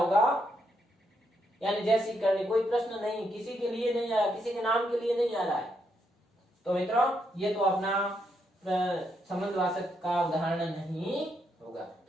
यानी जैसी करनी कोई प्रश्न नहीं, किसी के लिए नहीं आ रहा, किसी के नाम के लिए नहीं आ रहा है, तो मित्रों ये तो अपना संबंधवाचक का उदाहरण नहीं होगा।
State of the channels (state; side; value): normal; both; correlation 0.78